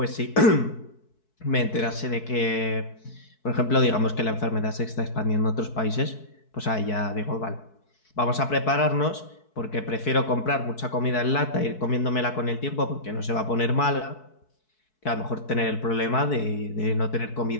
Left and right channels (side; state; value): right; late; 4.6 ms